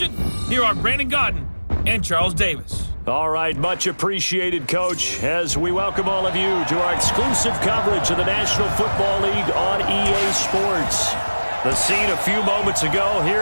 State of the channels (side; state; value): both; inverted; correlation -1.00